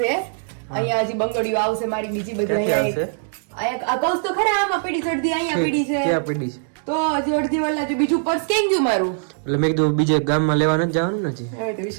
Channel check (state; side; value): silent; left; digital silence